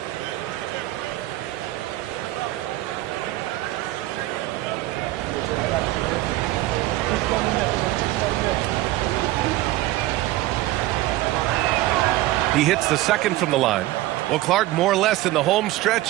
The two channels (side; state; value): left; quieter; 16.7 dB